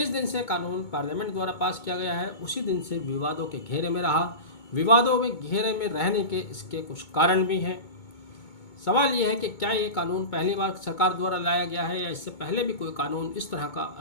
दिन से कानून पार्लियामेंट द्वारा पास किया गया है उसी दिन से विवादों के घेरे में रहा। विवादों में घेरे में रहने के इसके कुछ कारण भी हैं। सवाल यह है कि क्या ये कानून पहली बार सरकार द्वारा लाया गया है या इससे पहले भी कोई कानून इस तरह का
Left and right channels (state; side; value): late; right; 2.2 ms